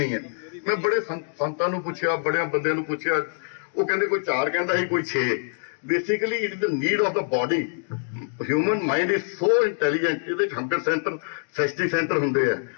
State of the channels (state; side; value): silent; right; digital silence